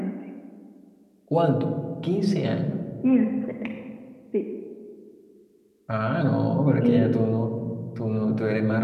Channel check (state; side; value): identical; both; correlation 1.00